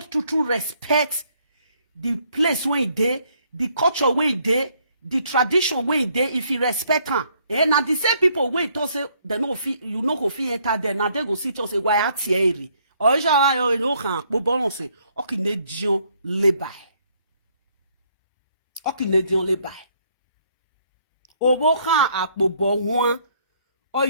respect the place where you there, the culture where you there, the tradition where you there, if you respect her. Now the same people where you say, they no fee, you no go fee enter there, now they go see to say, why are Thierry? Or you know, bo balance, okay, ne dion le bay. Okay, ne dion le bay. Obo kan akpobo huan o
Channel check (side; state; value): both; inverted; correlation -0.68